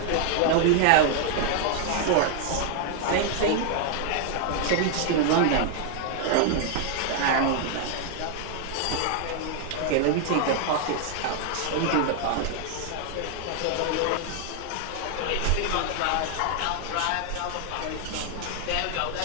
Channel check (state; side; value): different; both; correlation 0.00